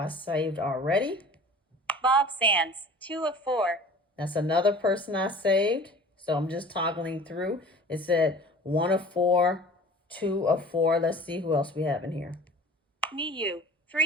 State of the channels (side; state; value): both; normal; correlation 0.43